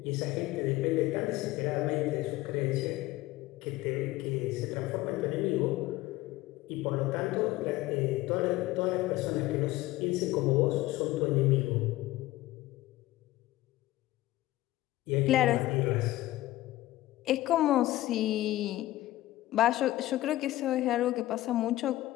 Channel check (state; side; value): quieter; right; 16.8 dB